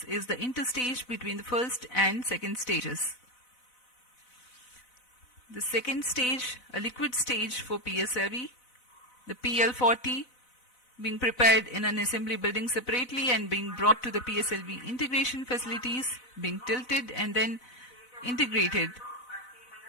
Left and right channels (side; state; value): right; late; 4.0 ms